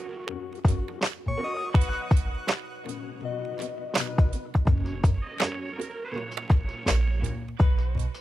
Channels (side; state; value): both; normal; correlation 0.93